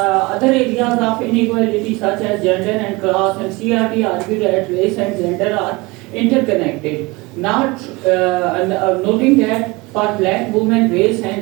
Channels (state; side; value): quieter; left; 24.0 dB